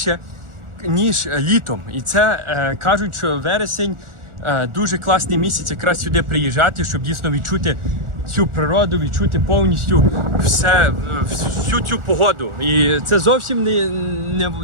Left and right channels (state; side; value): late; left; 1.4 ms